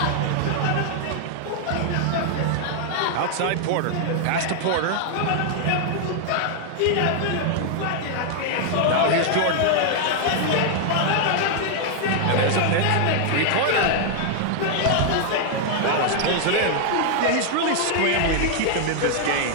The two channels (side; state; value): both; different; correlation 0.00